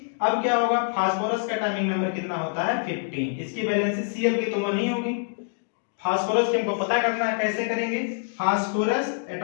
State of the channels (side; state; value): right; silent; 61 dB below the other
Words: अब क्या होगा, फास्फोरस का एटॉमिक नंबर कितना होता है 15। इसकी वैलेंसी Cl की तो 1 ही होगी। फास्फोरस की हमको पता करना है, कैसे करेंगे, फास्फोरस